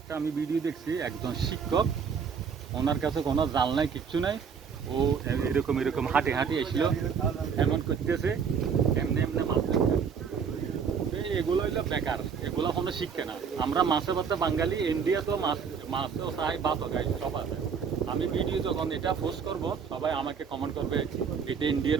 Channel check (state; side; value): quieter; left; 6.4 dB